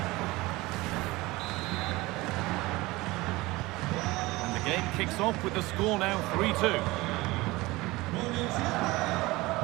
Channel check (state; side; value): quieter; left; 21.0 dB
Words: And the game kicks off with the score now 3-2.